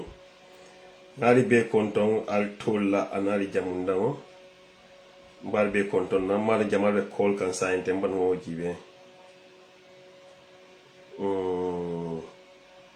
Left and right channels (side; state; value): both; identical; correlation 1.00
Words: konton al tolla anali jamundamo. Mbal be konton na mala jamal be call kan sa inte mban wo jibe. Mm,